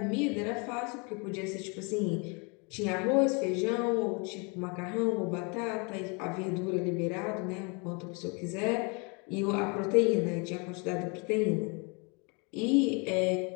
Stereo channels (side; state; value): right; quieter; 32.4 dB